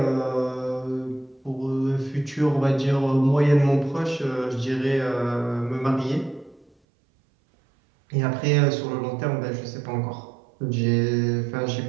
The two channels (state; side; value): drops out; left; at 6.7 s